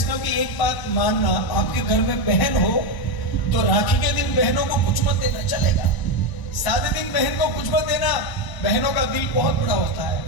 की एक बात मानना, आपके घर में बहन हो तो राखी के दिन बहनों को कुछ मत देना, चलेगा। सादे दिन बहन को कुछ मत देना, बहनों का दिल बहुत बड़ा होता है,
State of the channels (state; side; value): late; right; 1.0 ms